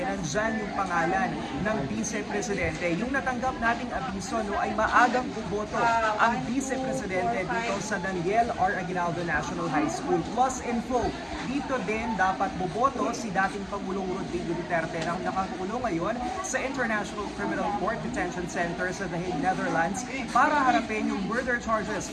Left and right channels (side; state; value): both; identical; correlation 1.00